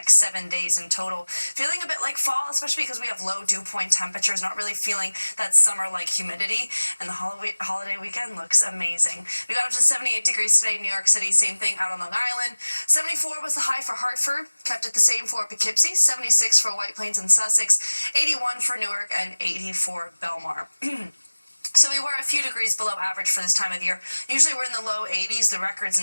7 days in total. Feeling a bit like fall, especially because we have low dew point temperatures, not really feeling that summer-like humidity, and the holiday weekend looks amazing. We got up to 78 degrees today in New York City, same thing out on Long Island. 74 was the high for Hartford, kept it the same for Poughkeepsie, 76 for White Plains and Sussex, 81 for Newark, and 80 for Belmar. So we were a few degrees below average for this time of year. Usually we're in the low 80s. The record's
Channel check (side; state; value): both; inverted; correlation -1.00